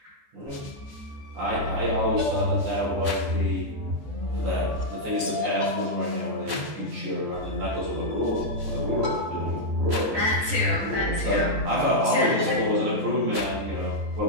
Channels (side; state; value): left; late; 14 ms